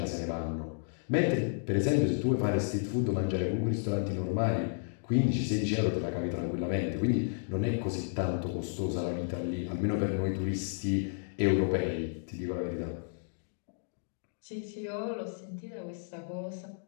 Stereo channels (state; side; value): silent; right; digital silence